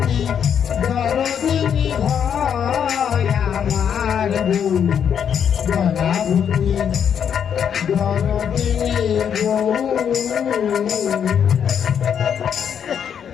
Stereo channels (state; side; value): quieter; right; 8.1 dB